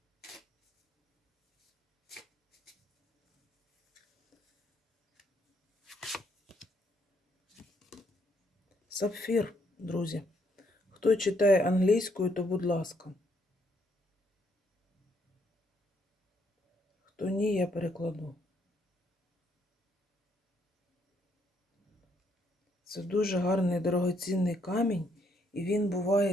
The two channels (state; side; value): normal; both; correlation 0.72